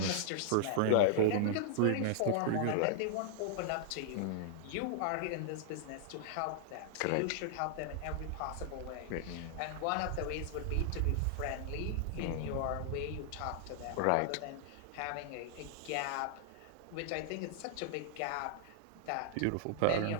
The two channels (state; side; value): different; both; correlation -0.01